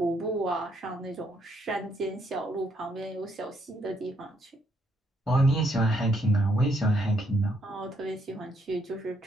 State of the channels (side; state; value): both; normal; correlation 0.73